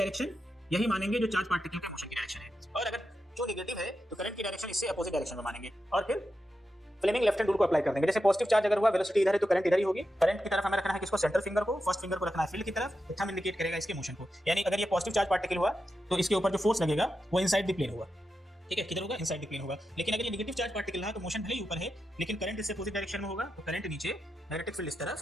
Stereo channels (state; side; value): normal; both; correlation 0.88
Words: यही मानेंगे जो चार्ज पार्टिकल का मोशन की डायरेक्शन है, और अगर जो नेगेटिव है तो करंट की डायरेक्शन इससे अपोजिट डायरेक्शन में मानेंगे और फिर फ्लेमिंग लेफ्ट हैंड रूल को अप्लाई कर देंगे। जैसे पॉजिटिव चार्ज अगर हुआ, वेलोसिटी इधर है तो करंट इधर ही होगी। करंट की तरफ हमें रखना है किसको, सेंटर फिंगर को, फर्स्ट फिंगर को रखना है फील्ड की तरफ, थंब इंडिकेट करेगा इसके मोशन को। यानी अगर ये पॉजिटिव चार्ज पार्टिकल हुआ तो इसके ऊपर जो फोर्स लगेगा वो इनसाइड द प्लेन होगा। ठीक है, किधर होगा, इनसाइड द प्लेन होगा। लेकिन अगर ये नेगेटिव चार्ज पार्टिकल रहा तो मोशन भले ही ऊपर है लेकिन करंट इससे अपोजिट डायरेक्शन में होगा, तो करंट नीचे, मैग्नेटिक फील्ड इस